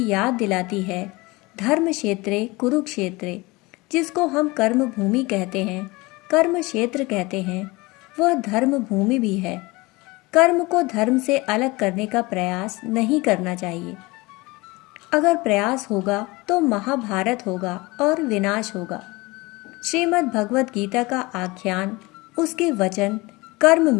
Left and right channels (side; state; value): right; quieter; 23.1 dB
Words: याद दिलाती है, धर्म क्षेत्रे कुरुक्षेत्रे, जिसको हम कर्म भूमि कहते हैं, कर्म क्षेत्र कहते हैं, वह धर्म भूमि भी है। कर्म को धर्म से अलग करने का प्रयास नहीं करना चाहिए। अगर प्रयास होगा तो महाभारत होगा और विनाश होगा। श्रीमद् भगवत गीता का आख्यान, उसके वचन कर्म